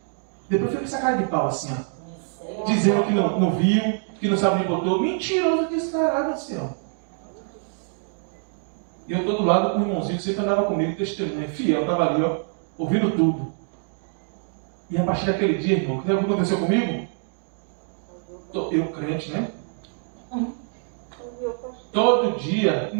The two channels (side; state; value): left; silent; 62 dB below the other